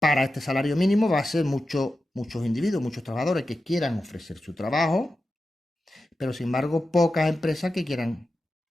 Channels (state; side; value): normal; both; correlation 0.92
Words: este salario mínimo va a ser muchos individuos, muchos trabajadores que quieran ofrecer su trabajo, pero sin embargo pocas empresas que quieran